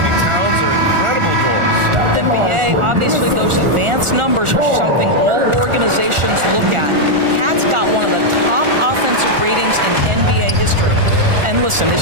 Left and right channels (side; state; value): left; late; 1.4 ms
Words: Towns are incredible doors. NBA, obviously those advanced numbers are something all organizations look at. Cat's got one of the top offensive ratings in NBA history. And listen,